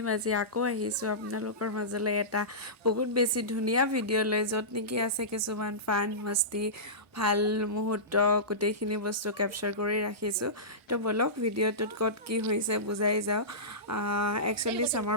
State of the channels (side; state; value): both; normal; correlation -0.19